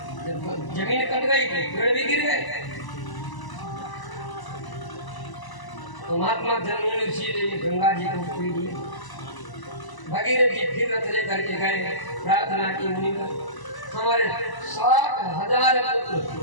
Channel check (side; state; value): right; late; 1.0 ms